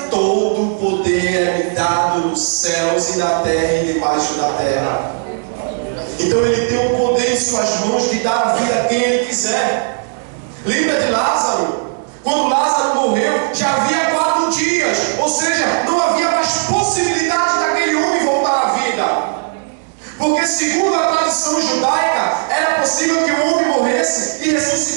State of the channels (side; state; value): left; silent; digital silence